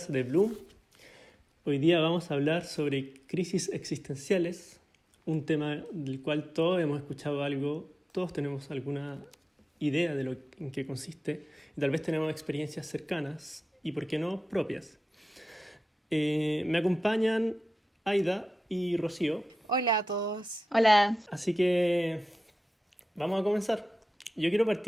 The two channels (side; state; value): both; normal; correlation 0.94